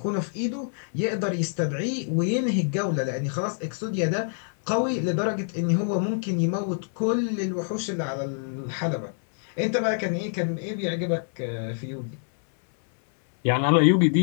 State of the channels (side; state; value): right; silent; 60 dB below the other